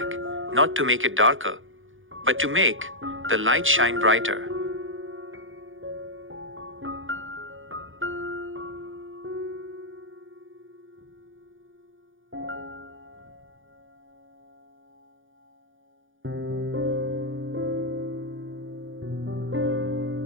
not to make it darker, but to make the light shine brighter.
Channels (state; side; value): late; left; 0.58 ms